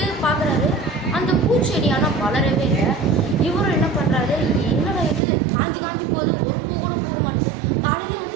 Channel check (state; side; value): drops out; left; at 5.2 s